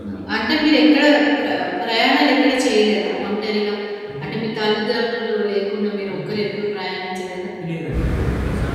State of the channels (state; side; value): identical; both; correlation 1.00